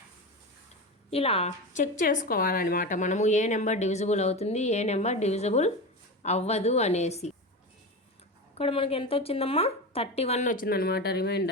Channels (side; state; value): both; normal; correlation 0.23